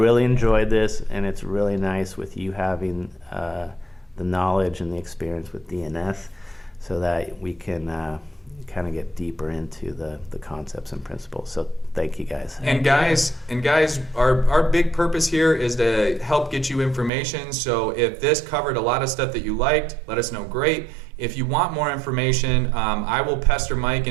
enjoyed this, and it's really nice with you having the knowledge and the experience with DNS so that we can kind of get deeper into the concepts and principles. So thank you guys. And guys, our big purpose here is to help get you information. So if this covered a lot of stuff that you liked, let us know. Great. If you want more information, I will pester Mike,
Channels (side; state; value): left; drops out; at 17.1 s